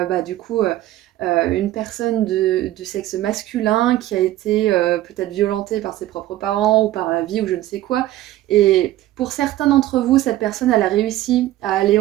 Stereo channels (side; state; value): left; quieter; 14.7 dB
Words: du coup une personne de sexe masculin qui a été peut-être violentée par ses propres parents ou par la vie ou je ne sais quoi. Et pour certains d'entre vous, cette personne, elle a réussi à aller